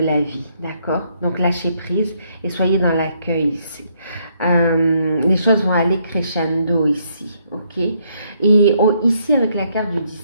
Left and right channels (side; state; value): both; inverted; correlation -0.72